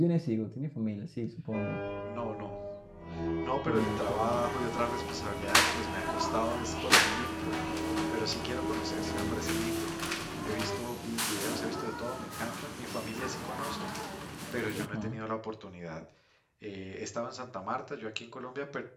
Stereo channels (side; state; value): both; identical; correlation 1.00